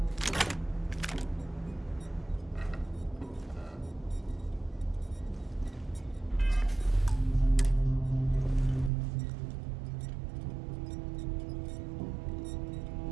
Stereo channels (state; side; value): drops out; left; at 8.9 s